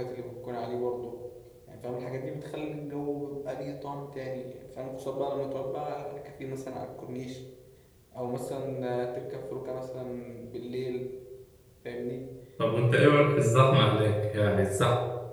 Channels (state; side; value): identical; both; correlation 1.00